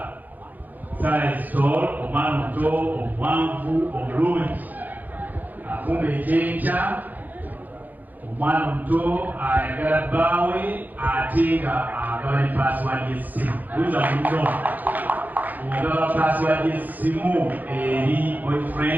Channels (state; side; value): late; left; 0.083 ms